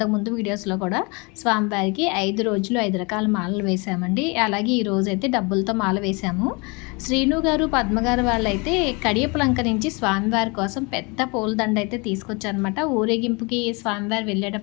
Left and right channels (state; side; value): quieter; right; 29.3 dB